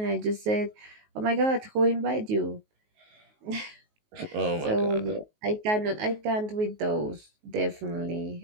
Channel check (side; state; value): left; late; 19 ms